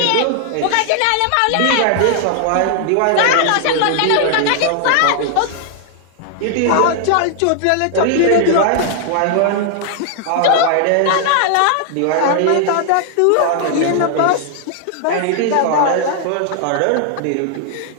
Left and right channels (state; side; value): different; both; correlation 0.00